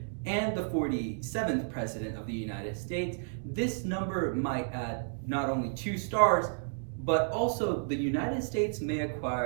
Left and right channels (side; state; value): left; silent; digital silence